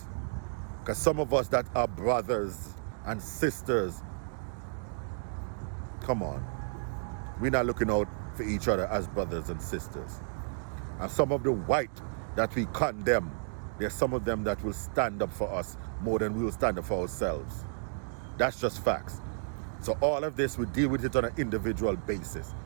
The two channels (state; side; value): silent; left; digital silence